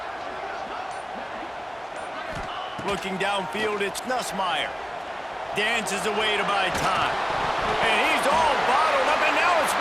Looking downfield, it's Nussmeier. Dances away to buy time. And he's all bottled up, and now it's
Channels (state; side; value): identical; both; correlation 1.00